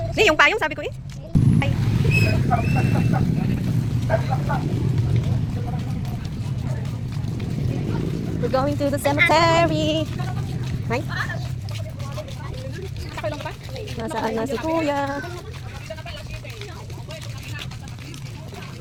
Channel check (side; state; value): both; identical; correlation 1.00